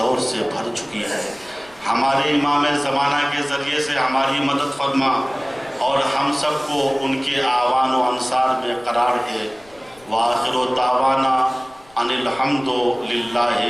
سے بھر چکی ہے، ہمارے امام زمانہ کے ذریعے سے ہماری مدد فرما اور ہم سب کو ان کے اعوان و انصار میں قرار دے. وآخر دعوانا ان الحمد للہ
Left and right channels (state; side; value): noise; left; rumble, 28 dB below the sound